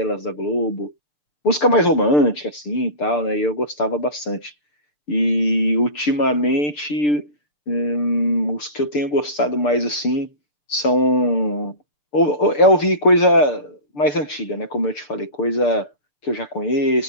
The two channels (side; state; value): right; late; 6.8 ms